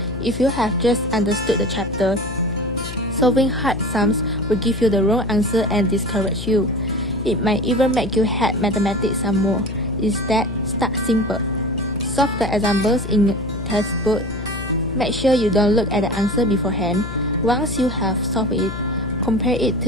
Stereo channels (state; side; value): noise; left; hum, 9 dB below the sound